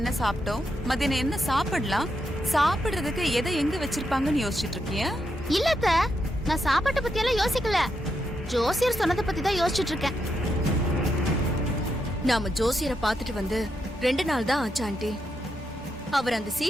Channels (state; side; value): normal; both; correlation 0.82